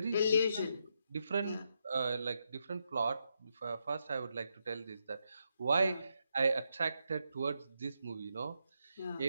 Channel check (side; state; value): both; inverted; correlation -0.82